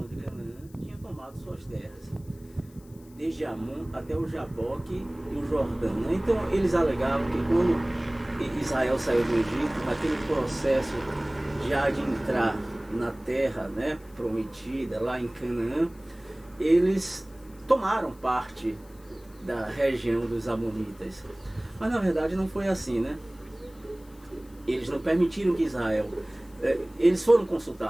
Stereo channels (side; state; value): left; noise; hiss, 27 dB below the sound